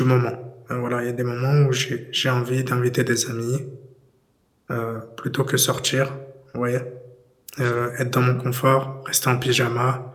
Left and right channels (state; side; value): identical; both; correlation 1.00